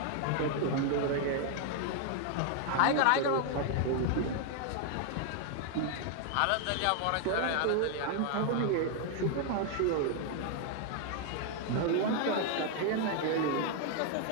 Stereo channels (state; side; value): different; both; correlation 0.00